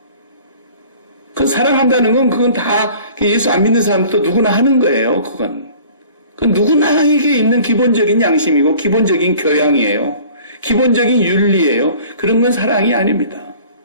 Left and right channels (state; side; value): inverted; both; correlation -0.48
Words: 그 사랑한다는 건 그건 다 예수 안 믿는 사람도 누구나 하는 거예요. 그건. 그 누구나에게 있는 기본적인 양심이고 기본적인 교양이에요. 기본적인 윤리예요. 그런 건 사랑이 아닙니다.